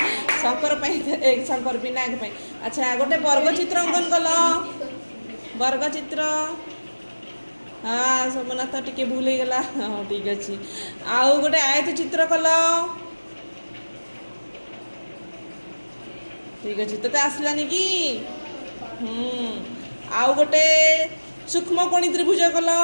शंकर शंकर विनायक। अच्छा गोटे वर्ग चित्र अंकन कल वर्ग चित्र। हाँ सोमनाथ टिके भूल हो गला। हाँ ठीक अच्छे आउ गोटे आयत चित्र कल ठीक अच्छे तो आसलानी कि आउ गोटे सूक्ष्म कोणी त्रिभुज कल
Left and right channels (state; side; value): inverted; both; correlation -1.00